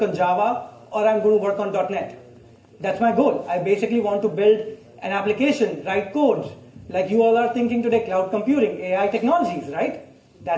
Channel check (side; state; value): both; identical; correlation 1.00